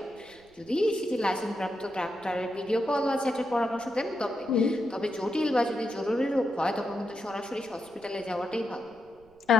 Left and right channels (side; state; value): right; noise; rumble, 29 dB below the sound